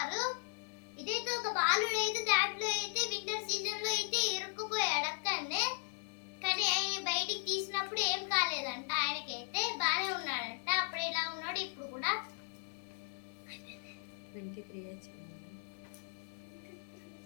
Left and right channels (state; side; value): silent; right; 53 dB below the other